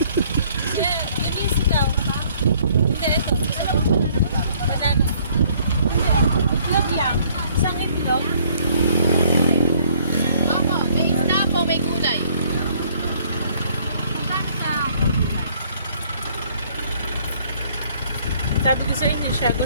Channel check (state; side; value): inverted; both; correlation -0.61